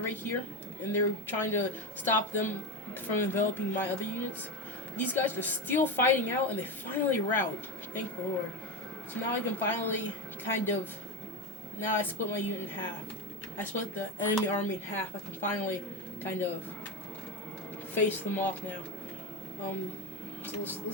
right here, and they're trying to stop them from enveloping my other units. These guys are still fighting out, and they finally rout. Thank the Lord. So now I can finally now I split my unit in half. I split the enemy army in half. I can finally kind of face them off now. So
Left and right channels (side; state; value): both; normal; correlation 0.17